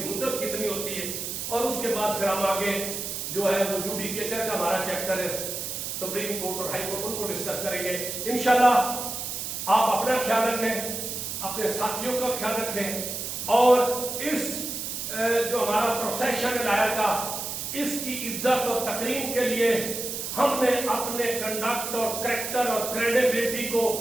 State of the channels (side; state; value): right; noise; hiss, 5 dB below the sound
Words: मुद्दत कितनी होती है। और उसके बाद फिर हम आगे जो है वो जुडिकेचर का हमारा चैप्टर है, सुप्रीम कोर्ट और हाई कोर्ट, उनको डिस्कस करेंगे। इंशाल्लाह आप अपना ख्याल रखें, अपने साथियों का ख्याल रखें और इस जो हमारा प्रोसेशन लाया था इसकी इज्जत और तकरीम के लिए हमने अपने कंडक्ट और करेक्टर और क्रेडिबिलिटी को